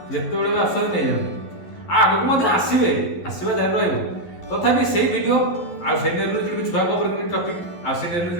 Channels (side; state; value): right; late; 11 ms